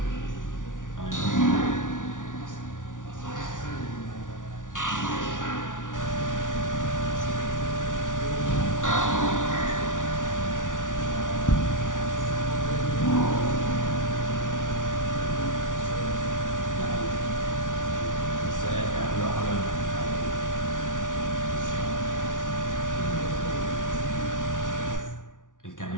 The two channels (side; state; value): right; late; 0.87 ms